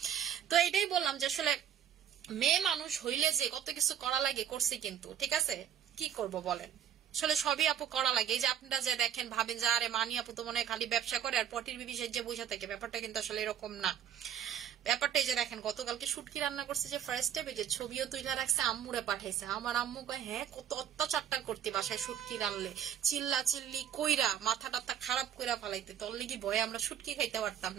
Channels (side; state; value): left; quieter; 9.7 dB